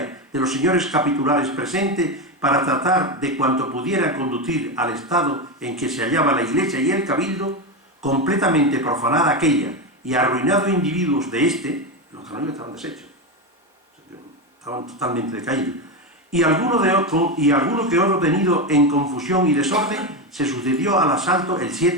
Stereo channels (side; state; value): both; normal; correlation 0.13